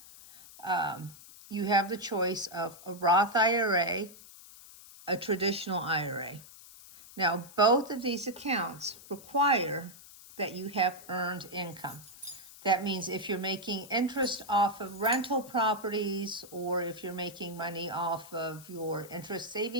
you have the choice of a Roth IRA, a traditional IRA. Now, both of these accounts require that you have earned income. That means if you're making interest off of rental properties, or if you're making money off of your interest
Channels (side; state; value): left; noise; hiss, 19 dB below the sound